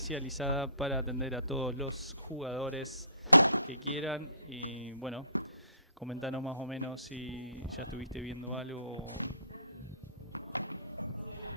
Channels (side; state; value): both; inverted; correlation -0.56